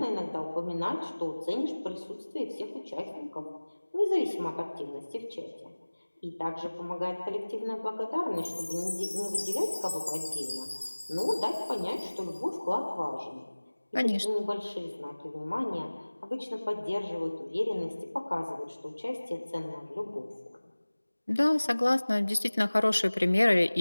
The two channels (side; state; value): both; inverted; correlation -1.00